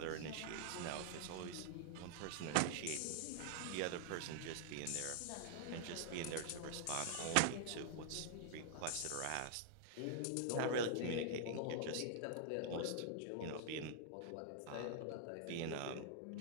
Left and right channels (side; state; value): both; different; correlation -0.01